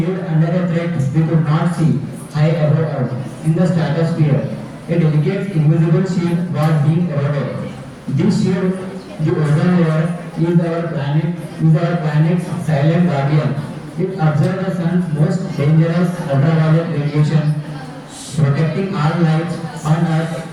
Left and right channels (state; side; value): identical; both; correlation 1.00